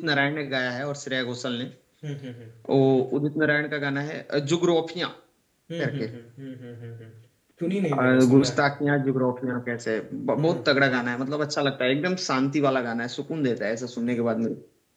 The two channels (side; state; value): both; identical; correlation 1.00